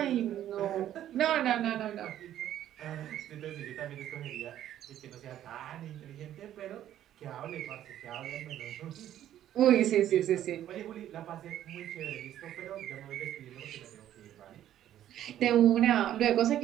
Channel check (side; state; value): left; quieter; 11.7 dB